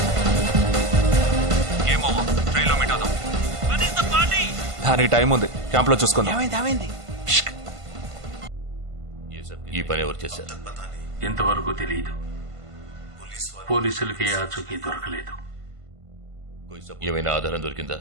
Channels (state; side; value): late; left; 1.5 ms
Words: Game over. ట్రైన్లో మీట్ అవుదాం. దానికి టైం ఉంది. క్యాంప్ లో చూసుకుందాం. ఈ పని ఎవరు చేశారు? ఇంతవరకు తెలియదు. పోలీసులకి ఆచూకీ దొరకలేదు. ఏమైనా ఆధారం దొరికిందా?